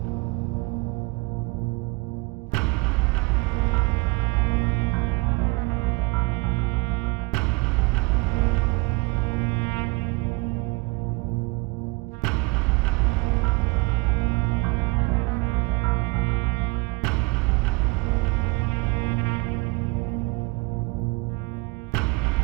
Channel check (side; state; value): left; quieter; 25.8 dB